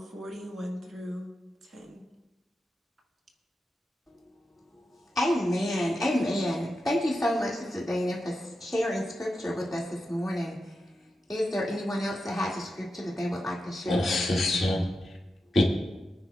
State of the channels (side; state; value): both; normal; correlation 0.89